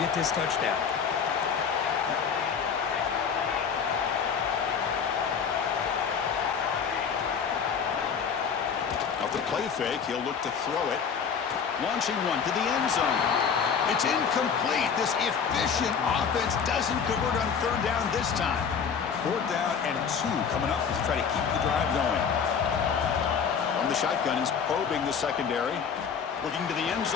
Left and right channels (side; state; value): right; quieter; 6.6 dB